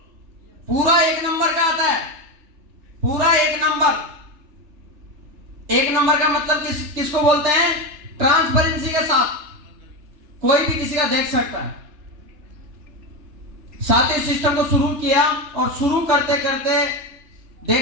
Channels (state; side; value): late; left; 3.3 ms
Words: पूरा 1 नंबर का आता है, पूरा 1 नंबर। 1 नंबर का मतलब किसको बोलते हैं? ट्रांसपेरेंसी के साथ कोई भी किसी का देख सकता है। साथ ही सिस्टम को शुरू किया और शुरू करते करते